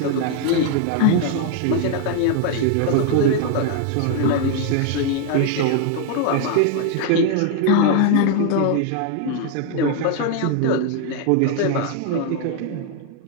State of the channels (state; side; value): different; both; correlation 0.00